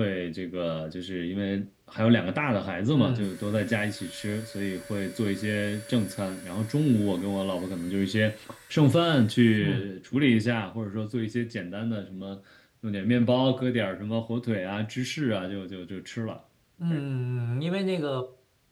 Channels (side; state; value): both; identical; correlation 1.00